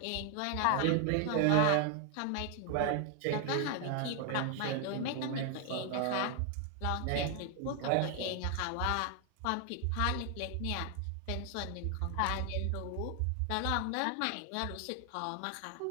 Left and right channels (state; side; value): different; both; correlation 0.00